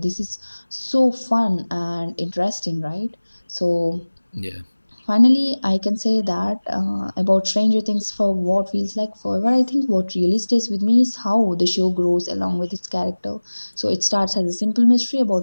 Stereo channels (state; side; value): inverted; both; correlation -1.00